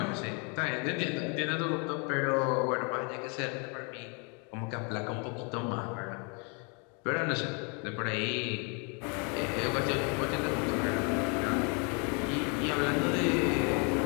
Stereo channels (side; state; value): right; quieter; 35.0 dB